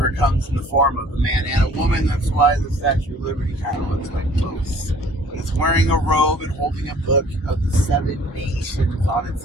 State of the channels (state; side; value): normal; both; correlation 0.53